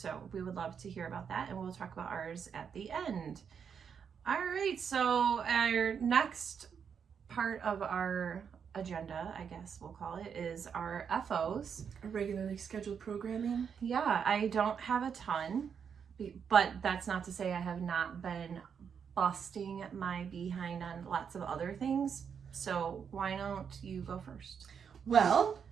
we would love to hear about that, and we'll talk about ours at the end. All right, so our next part of our agenda, I guess we'll call it, is our FOs. Regularly scheduled programming. Yeah, I don't have a ton, but that's not to say I have not been busting my behind on lots of other things. So why don't you go first? Well,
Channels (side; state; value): left; quieter; 7.0 dB